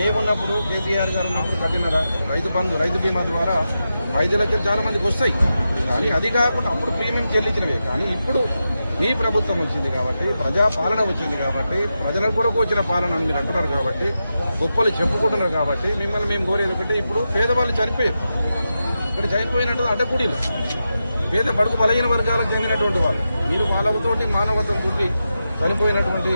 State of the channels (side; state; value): both; inverted; correlation -0.89